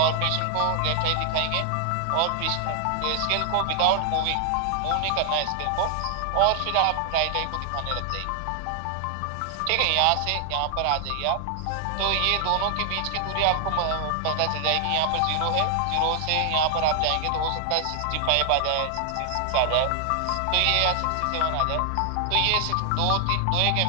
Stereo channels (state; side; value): different; both; correlation 0.00